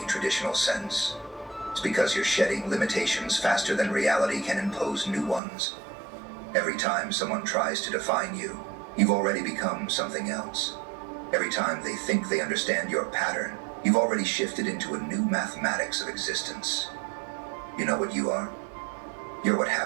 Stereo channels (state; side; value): drops out; left; at 5.4 s